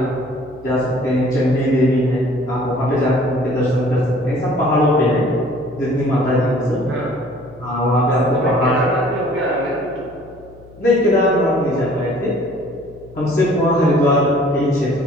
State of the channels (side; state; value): left; noise; hum, 23 dB below the sound